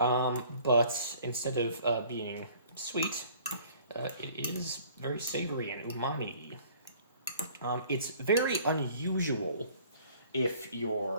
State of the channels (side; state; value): both; inverted; correlation -0.54